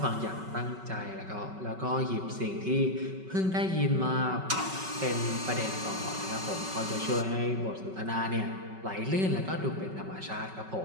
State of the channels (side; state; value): left; late; 5.3 ms